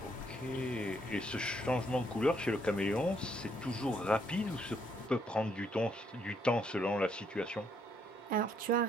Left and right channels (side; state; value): both; normal; correlation 0.72